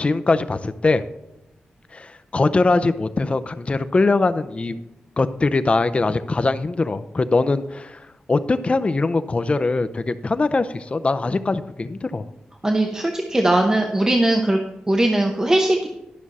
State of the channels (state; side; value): normal; both; correlation 0.93